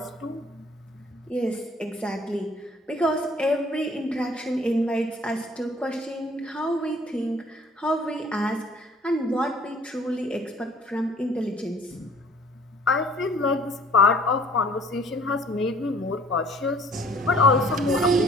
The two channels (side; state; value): both; normal; correlation 0.55